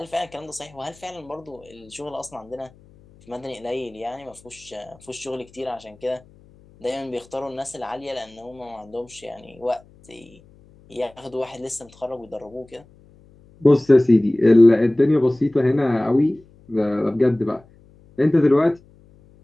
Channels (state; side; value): noise; left; hum, 27 dB below the sound